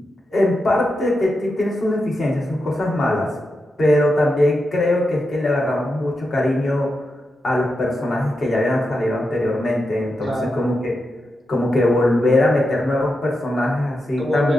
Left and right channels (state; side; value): normal; both; correlation 0.87